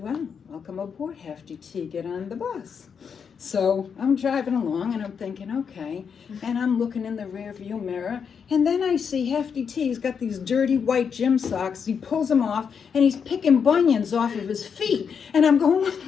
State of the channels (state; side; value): quieter; right; 6.7 dB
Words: welcome aboard, Hefty T, get on the bus. So I'm driving along, and I'm thinking, okay, and I'm looking in the rear view mirror, and then I see Hefty T. He's got these dirty white gym socks. He pulls them off, and he's picking bunions off of his feet. And I'm going,